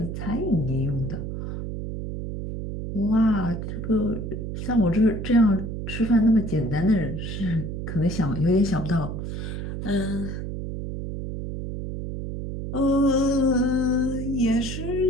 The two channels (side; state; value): right; noise; hum, 5 dB below the sound